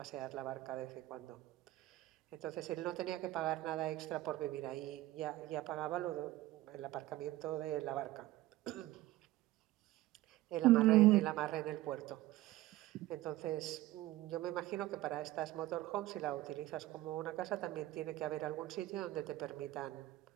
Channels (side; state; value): left; quieter; 16.7 dB